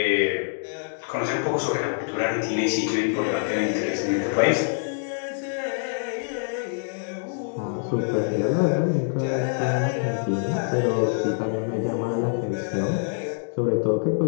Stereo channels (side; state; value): right; silent; digital silence